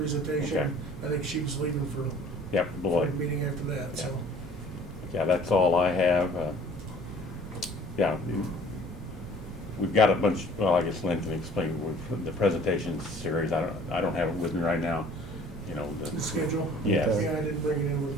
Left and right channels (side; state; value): both; normal; correlation 0.52